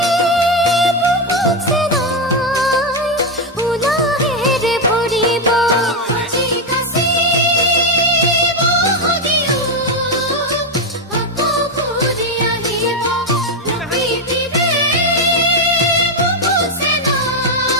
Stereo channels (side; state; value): both; normal; correlation 0.06